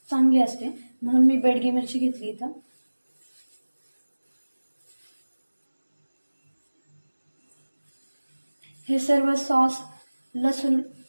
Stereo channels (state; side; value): inverted; both; correlation -1.00